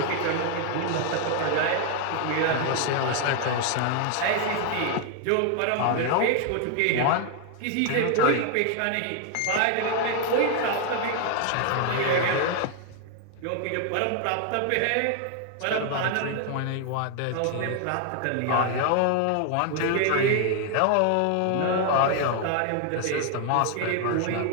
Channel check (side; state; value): both; different; correlation 0.00